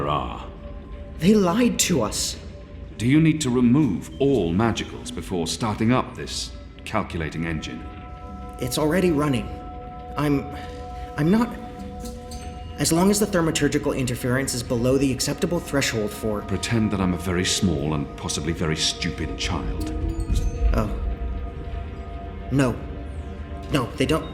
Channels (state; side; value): identical; both; correlation 1.00